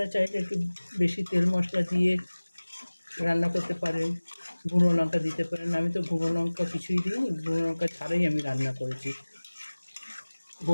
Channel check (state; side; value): inverted; both; correlation -1.00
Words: চাইলে একটু বেশি তেল মশলা দিয়ে রান্না করতে পারেন, গুঁড়ো লঙ্কা দিতে পারেন। আমি তো গুঁড়ো লঙ্কা কিছুই দিইনি, গুঁড়ো লঙ্কা ছাড়াই আমি রান্না করেছি।